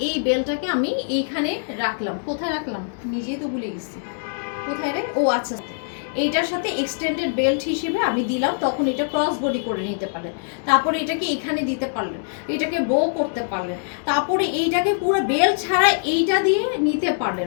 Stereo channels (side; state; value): right; silent; 63 dB below the other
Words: বেলটাকে আমি এইখানে রাখলাম, কোথায় রাখলাম নিজেই তো ভুলে গেছি, কোথায় রে, ও আচ্ছা এইটার সাথে এক্সটেন্ডেড বেল্ট হিসেবে আমি দিলাম, তখন এটা ক্রস বডি করে নিতে পারলেন। তারপরে এটাকে এখানে দিতে পারলেন, এটাকে বো করতে পারলেন, তারপরে এইটাকে পুরো বেল্ট ছাড়া এইটা দিয়ে নিতে